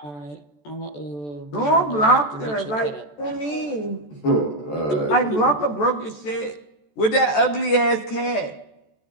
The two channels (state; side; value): late; right; 14 ms